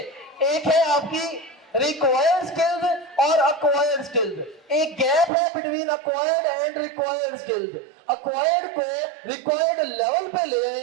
एक है आपकी रिक्वायर्ड स्किल्स और अक्वायर्ड स्किल्स. एक गैप है between acquired and required skills. Acquired को रिक्वायर्ड लेवल पे ले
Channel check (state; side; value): drops out; left; at 5.3 s